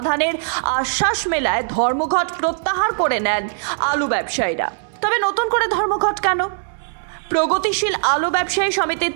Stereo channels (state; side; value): silent; left; digital silence